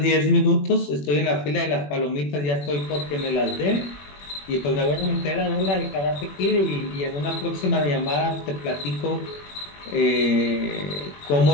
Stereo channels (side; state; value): right; late; 21 ms